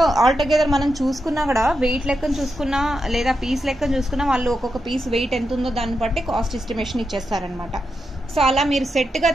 ఆల్టుగెదర్ మనం చూసుకున్నా కూడా వెయిట్ లెక్కన చూసుకున్నా లేదా పీస్ లెక్కన చూసుకున్నా వాళ్ళు ఒక్కొక్క పీస్ వెయిట్ ఎంత ఉందో దాన్ని బట్టి కాస్ట్ ఎస్టిమేషన్ ఇచ్చేస్తారనమాట. సో అలా మీరు సెట్గా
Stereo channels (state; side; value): normal; both; correlation 0.86